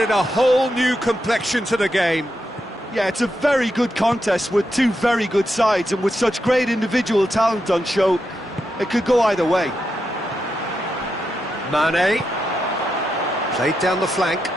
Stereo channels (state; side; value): normal; both; correlation 0.85